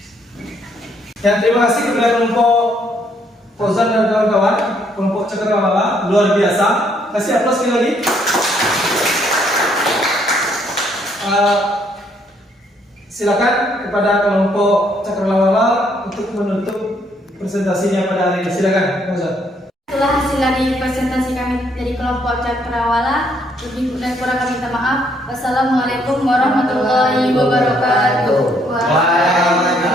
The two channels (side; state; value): both; normal; correlation 0.69